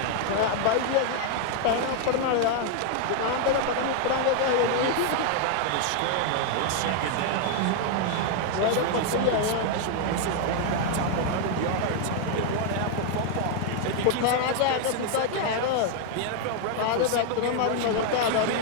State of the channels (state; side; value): different; both; correlation 0.00